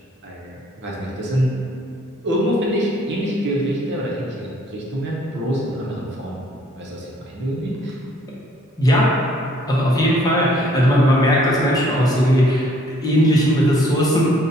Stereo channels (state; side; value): normal; both; correlation 0.62